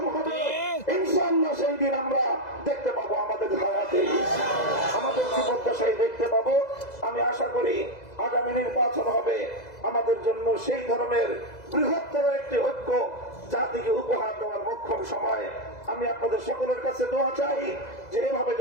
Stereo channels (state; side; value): late; right; 2.0 ms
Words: হবে। ইনশাআল্লাহ সেই দিন আমরা দেখতে পাবো আমাদের হায়াতে, আমাদের জীবদ্দশায় দেখতে পাবো। আমি আশা করি আগামী নির্বাচন হবে আমাদের জন্য সেই ধরনের বৃহত্তর একটি ঐক্য জাতিকে উপহার দেওয়ার মোক্ষম সময়। আমি আপনাদের সকলের কাছে দোয়া চাই যে এভাবে